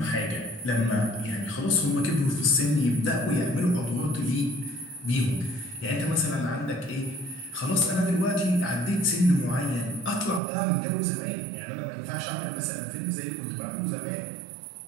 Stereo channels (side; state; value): left; drops out; at 10.4 s